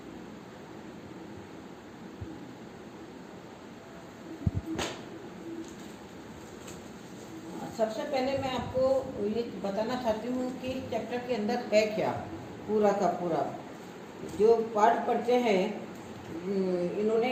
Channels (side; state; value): both; identical; correlation 1.00